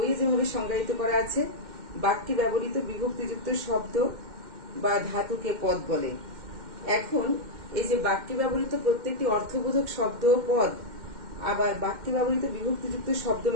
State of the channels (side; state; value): left; late; 2.1 ms